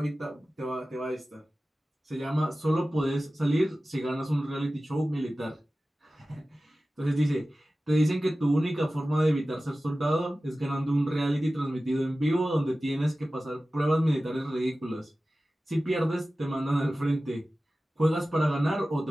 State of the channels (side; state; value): both; normal; correlation 0.96